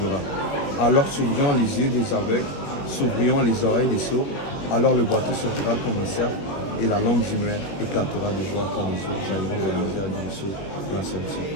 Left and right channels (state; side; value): late; right; 21 ms